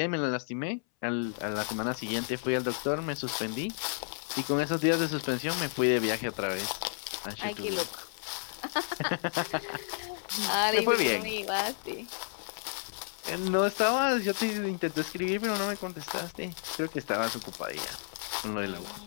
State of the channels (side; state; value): right; silent; 57 dB below the other